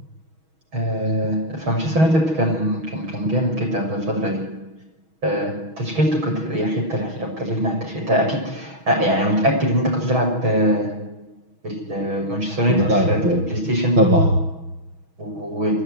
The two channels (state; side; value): late; left; 6.2 ms